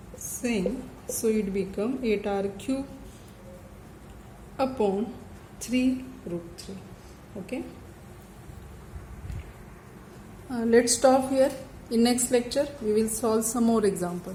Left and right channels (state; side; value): identical; both; correlation 1.00